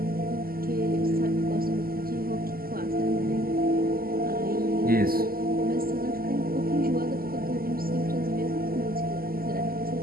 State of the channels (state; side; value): late; left; 0.43 ms